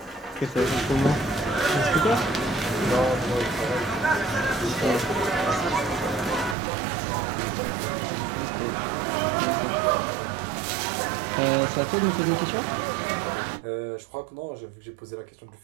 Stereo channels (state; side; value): drops out; left; at 6.6 s